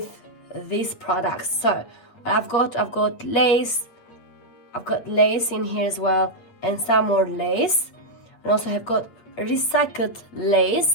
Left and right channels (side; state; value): right; late; 8.6 ms